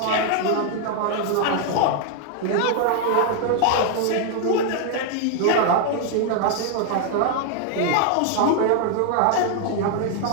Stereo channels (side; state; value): both; different; correlation 0.00